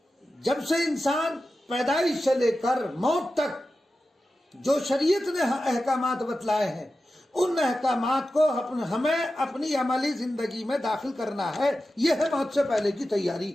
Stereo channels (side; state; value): both; normal; correlation 0.92